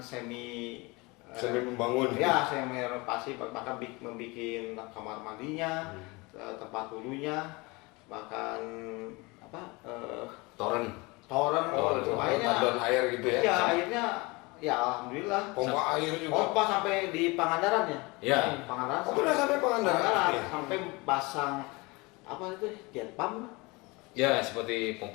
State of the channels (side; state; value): right; quieter; 25.3 dB